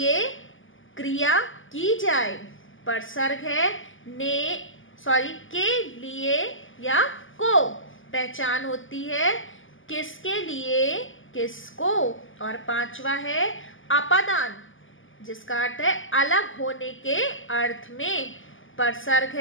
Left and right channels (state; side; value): late; right; 0.58 ms